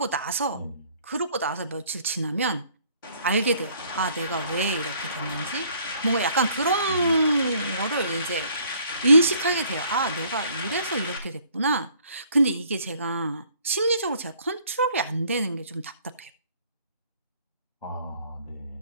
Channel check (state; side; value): inverted; both; correlation -0.60